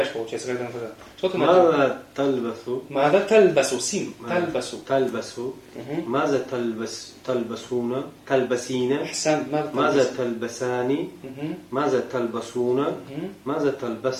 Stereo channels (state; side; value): identical; both; correlation 1.00